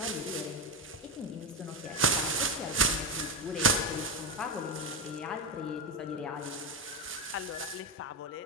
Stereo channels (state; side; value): normal; both; correlation 0.11